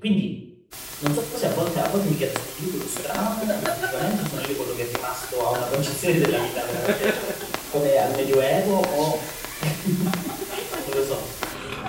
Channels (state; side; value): identical; both; correlation 1.00